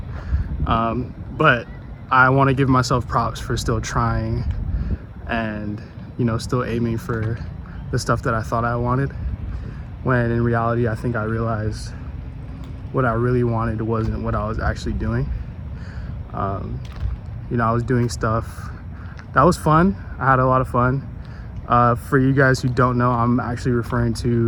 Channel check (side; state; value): both; identical; correlation 1.00